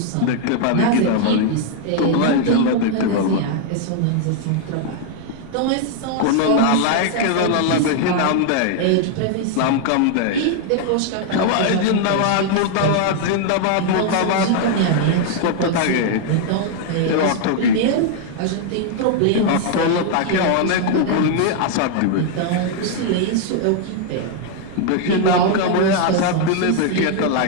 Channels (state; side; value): different; both; correlation 0.00